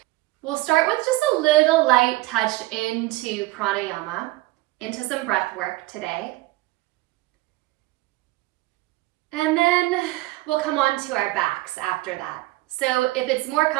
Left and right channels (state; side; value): quieter; left; 19.6 dB